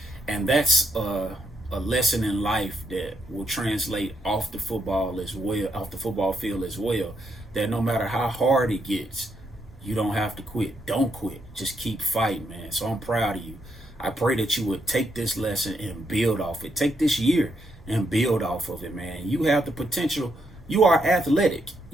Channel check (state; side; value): normal; both; correlation 0.79